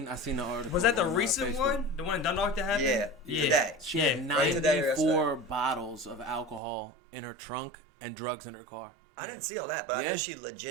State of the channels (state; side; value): drops out; left; at 6.6 s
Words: the article. Was that the on, recent Facebook. one? The one in Dundalk that happened? Yeah, today. She Yeah. had Right today or 94 bottles of alcohol in her trunk and drugs in her car. I didn't see all that, but I Yeah. know she